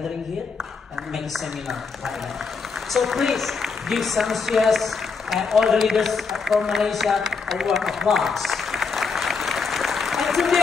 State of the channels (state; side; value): quieter; right; 5.0 dB